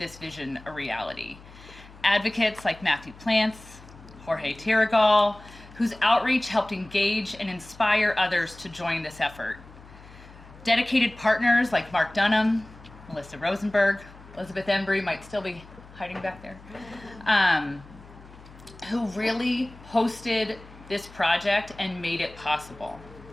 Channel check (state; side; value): noise; left; hum, 20 dB below the sound